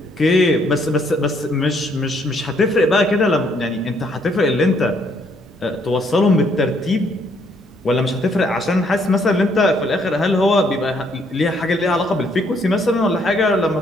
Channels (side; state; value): both; normal; correlation 0.69